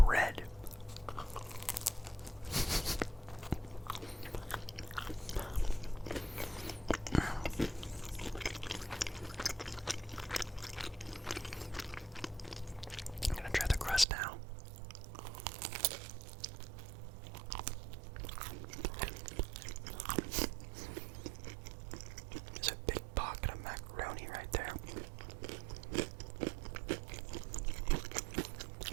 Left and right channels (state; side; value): drops out; left; at 14.1 s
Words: I'm gonna try the crust now. There's a big pocket of macaroni right there.